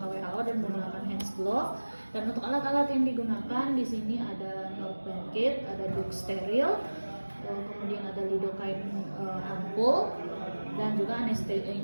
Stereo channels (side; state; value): both; inverted; correlation -1.00